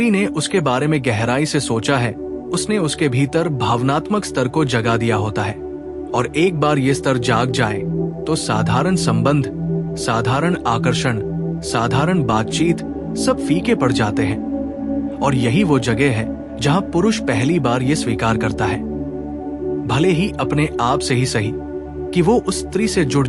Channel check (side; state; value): both; identical; correlation 1.00